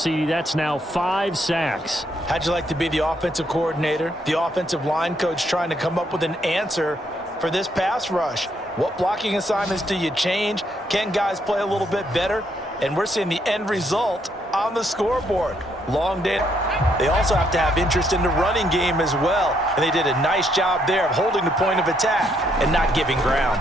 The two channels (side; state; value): both; normal; correlation 0.73